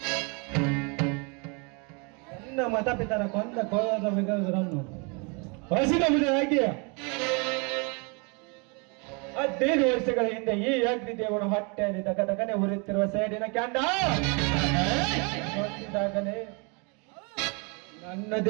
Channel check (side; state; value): left; quieter; 32.7 dB